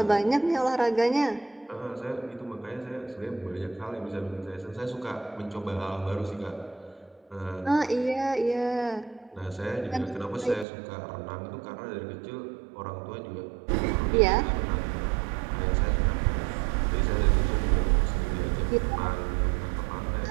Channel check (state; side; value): drops out; left; at 10.7 s